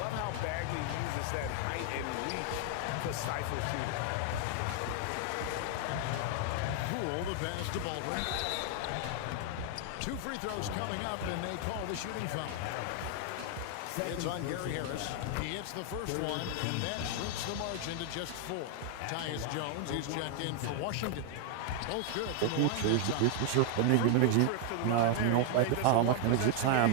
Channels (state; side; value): different; both; correlation 0.00